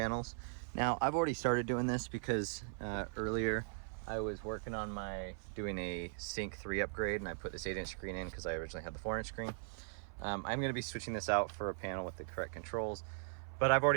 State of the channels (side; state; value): left; silent; 52 dB below the other